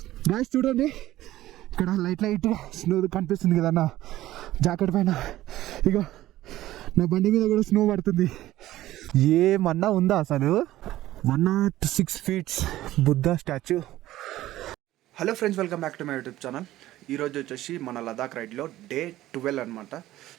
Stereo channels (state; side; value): quieter; left; 15.1 dB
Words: Guys చూడండి, ఇక్కడ light snow కనిపిస్తుంది కదా నా జాకెట్ పైన. ఇక నా బండి మీద కూడా స్నో పడుతుంది. ఏమన్నా ఉందా అసలు? 106 feet Buddha statue. Hello friends, welcome back to my YouTube channel. ఈరోజు వచ్చేసి మన లదాఖ్ రైడ్లో డే 12 అనమాట.